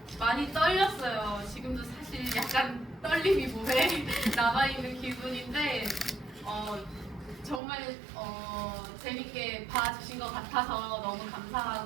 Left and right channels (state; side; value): drops out; left; at 7.6 s